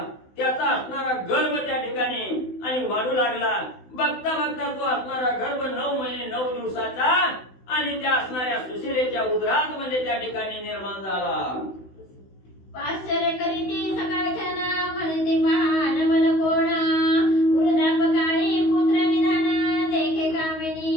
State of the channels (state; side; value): late; right; 16 ms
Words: त्याचा असणारा गर्भ त्या ठिकाणी आणि वाढू लागला. बघता बघता तो असणारा गर्भ 9 महिने 9 दिवसाचा आणि त्या असणाऱ्या सुशिलेच्या उदरात म्हणजे त्या ठिकाणी निर्माण झाला. आश्चर्य करीती सकाळच्या ना म्हणते पहा नमल कोण वृद्धापकाळी पुत्र निधान देखे